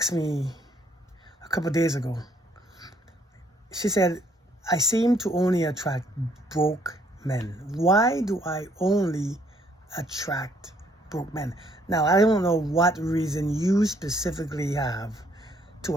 me a couple of days ago. She said, I seem to only attract broke men. Why do I only attract broke men? Now, I don't know what reason you specifically have to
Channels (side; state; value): both; normal; correlation 0.66